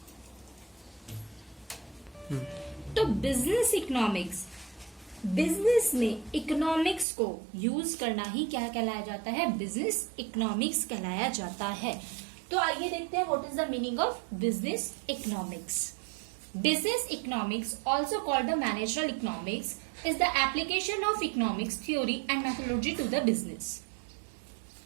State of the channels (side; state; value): left; drops out; at 7.1 s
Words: तो बिजनेस इकोनॉमिक्स, बिजनेस में इकोनॉमिक्स को यूज करना ही क्या कहलाया जाता है? बिजनेस इकोनॉमिक्स कहलाया जाता है। तो आइए देखते हैं what is the meaning of business economics. Business economics, also called the managerial economics, is the application of economics theory and methodology to the business.